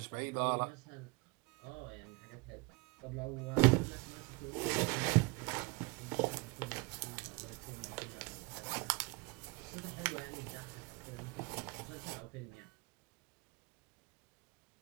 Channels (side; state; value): left; quieter; 26.7 dB